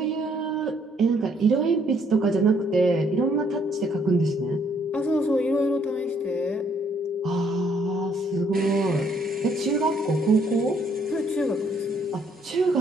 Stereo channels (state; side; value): normal; both; correlation 0.67